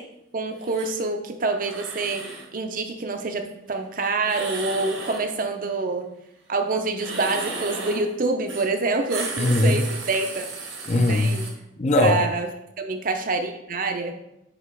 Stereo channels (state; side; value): normal; both; correlation 0.23